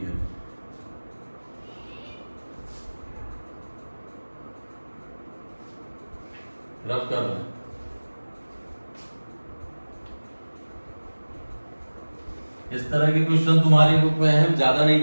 है। रफ कर रहे हैं। इस तरह के क्वेश्चन तुम्हारी बुक में है, ज्यादा नहीं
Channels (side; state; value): both; inverted; correlation -1.00